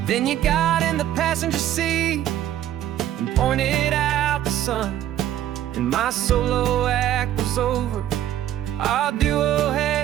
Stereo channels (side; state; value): left; quieter; 12.0 dB